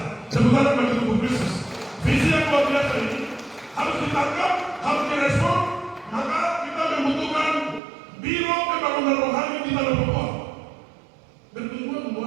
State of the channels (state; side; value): drops out; left; at 7.8 s